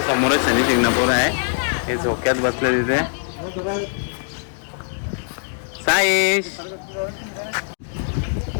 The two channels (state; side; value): silent; right; digital silence